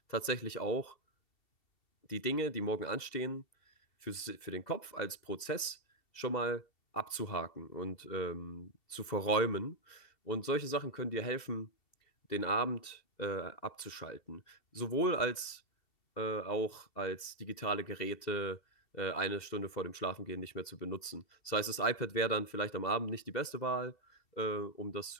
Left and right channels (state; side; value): late; right; 2.7 ms